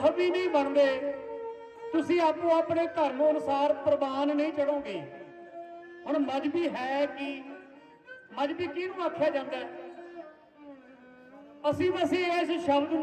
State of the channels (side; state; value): both; identical; correlation 1.00